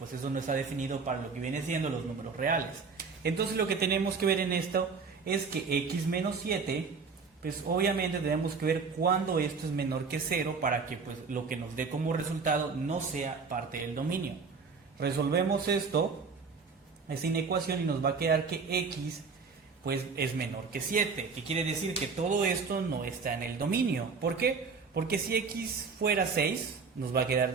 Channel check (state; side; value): quieter; left; 5.0 dB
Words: eso no está definido para lo que viene siendo los números reales. Entonces lo que tenemos que ver en esto es que x menos 7, pues obviamente tenemos que ver cuándo esto es menor que 0 para que pues lo que nos dé como resultado no sea parte del dominio. Resolvemos esta inecuación y nos va a quedar que x pues es menor que 7, que quiere decir que todo esto no está en el dominio. ¿Por qué? Porque si x fuera 6, nos va a